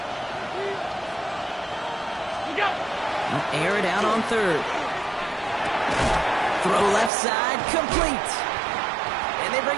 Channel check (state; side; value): drops out; left; at 7.1 s